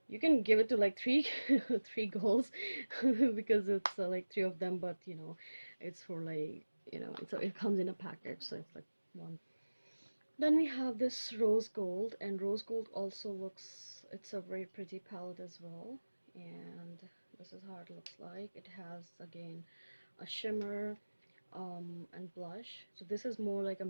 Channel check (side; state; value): both; inverted; correlation -1.00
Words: you can give it to like three three girls because it's like three of them, but it's for like it comes in a package, so it's like one. Then we have this rose gold, and rose gold also looks, it's a very pretty palette as well. And this is how it looks like. It has again a shimmer and blush. So this is more like a